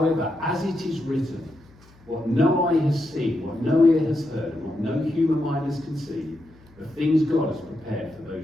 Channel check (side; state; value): left; noise; hum, 27 dB below the sound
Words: as it is written, what no eye has seen, what no ear has heard, and what no human mind has conceived, the things God has prepared for